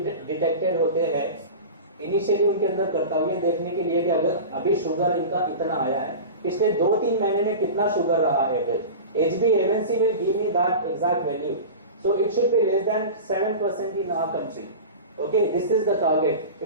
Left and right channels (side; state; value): both; inverted; correlation -0.31